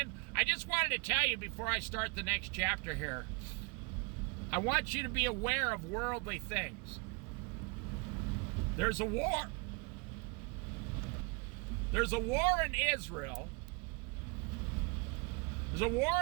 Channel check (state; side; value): quieter; left; 29.1 dB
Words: I just wanted to tell you before I start the next chapter here. I want you to be aware of worldly things. There's a war. There's a war in Israel. There's a